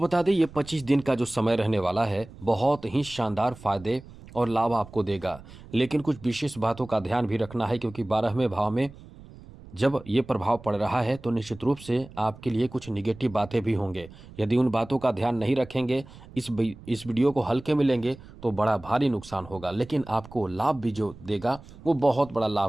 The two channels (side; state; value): right; noise; rumble, 19 dB below the sound